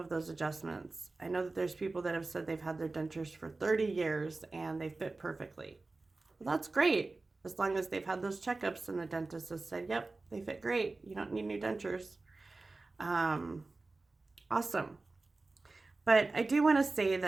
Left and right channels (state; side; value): quieter; left; 3.4 dB